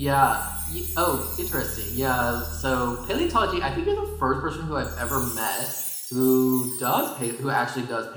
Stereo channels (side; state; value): both; identical; correlation 1.00